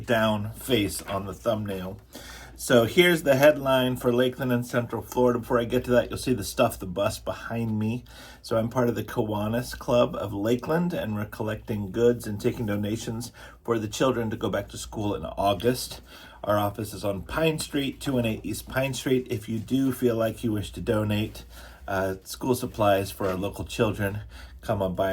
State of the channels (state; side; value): identical; both; correlation 1.00